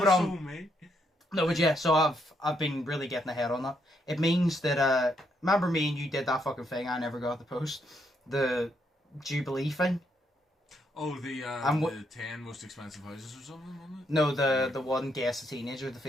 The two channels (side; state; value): both; normal; correlation 0.76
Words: No, but yeah, so I've been really getting ahead on that. It means that, remember me and you did that fucking thing I never got to post? The Jubilee thing? Oh, the 10 most expensive houses or something, wasn't it? No, the one guess the teenager, the